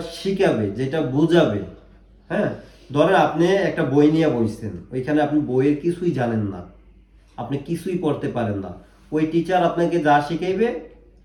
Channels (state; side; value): identical; both; correlation 1.00